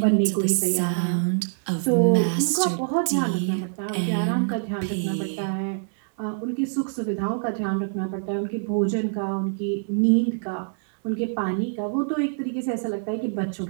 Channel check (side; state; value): left; silent; 61 dB below the other